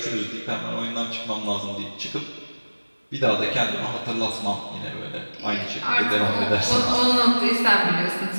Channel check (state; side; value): inverted; both; correlation -1.00